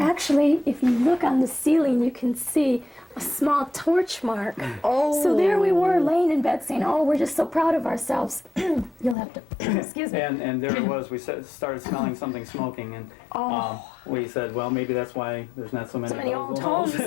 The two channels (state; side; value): drops out; right; at 9.2 s